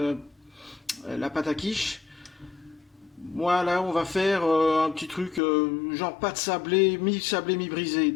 quiche. Moi, là, on va faire un petit truc genre pâte sablée, mi-brisée.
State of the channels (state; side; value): drops out; right; at 5.4 s